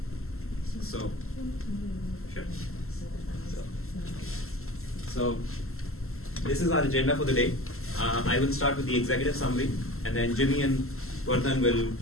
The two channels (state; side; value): late; right; 0.62 ms